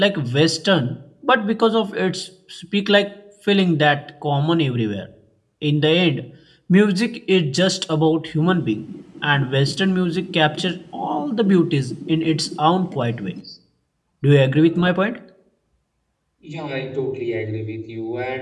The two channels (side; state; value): both; identical; correlation 1.00